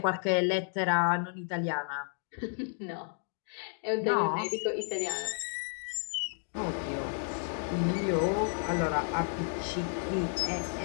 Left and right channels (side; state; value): right; silent; 56 dB below the other